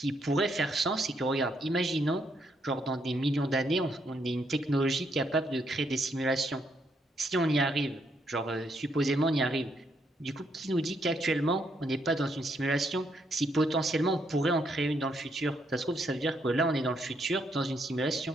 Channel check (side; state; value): both; normal; correlation 0.75